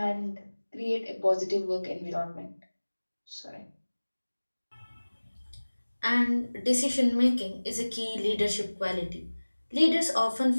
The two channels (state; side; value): inverted; both; correlation -1.00